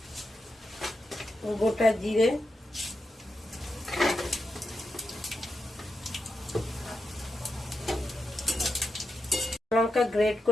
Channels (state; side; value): normal; both; correlation 0.87